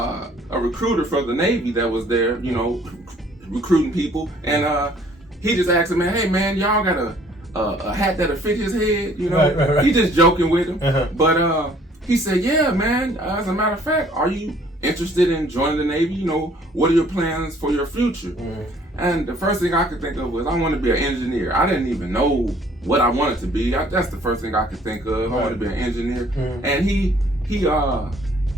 recruiter for the Navy that was there, you know, recruiting people, and he just asked him, man, hey man, y'all got a hat that'll fit his head, you know? Right. He just joking with him, but he said, yeah, man, as a matter of fact, are you interested in joining the Navy? You know, what are your plans for your future? And the first thing I could think of was, I want to be an engineer. I didn't even know what I wanted to be. That's the first thing I could think of. I wanted to be an engineer. And he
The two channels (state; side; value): normal; both; correlation 0.59